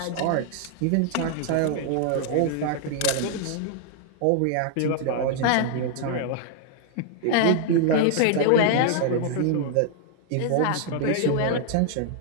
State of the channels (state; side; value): different; both; correlation 0.00